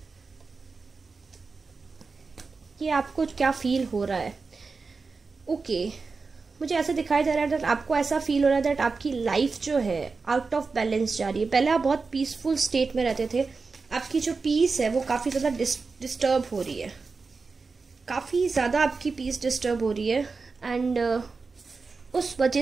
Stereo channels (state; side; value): quieter; left; 4.4 dB